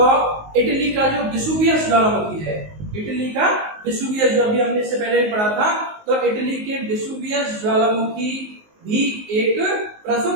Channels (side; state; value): left; late; 19 ms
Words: इटली का जो वेसुवियस ज्वालामुखी है, इटली का वेसुवियस जो अभी हमने इससे पहले भी पढ़ा था, तो इटली के वेसुवियस ज्वालामुखी भी एक